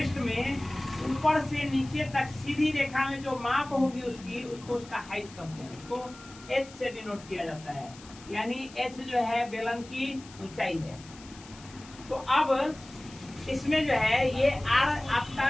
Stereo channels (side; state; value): left; noise; hiss, 20 dB below the sound